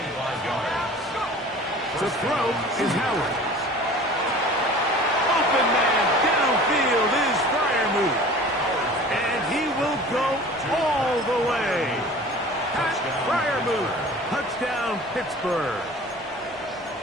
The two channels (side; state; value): both; normal; correlation 0.43